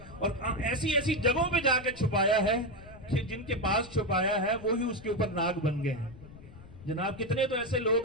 اور ایسی جگہوں پہ جا کے چھپایا ہے کہ جن کے پاس چھپایا ہے وہی اس کے اوپر ناگ بن گئے ہیں. جناب کتنے تو ایسے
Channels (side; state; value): left; noise; rumble, 18 dB below the sound